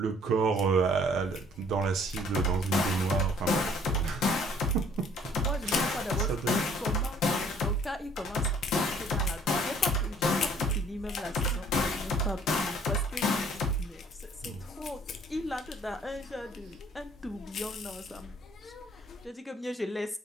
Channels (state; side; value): normal; both; correlation 0.58